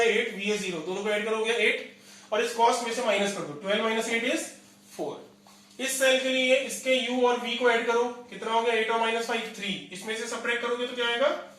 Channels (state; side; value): identical; both; correlation 1.00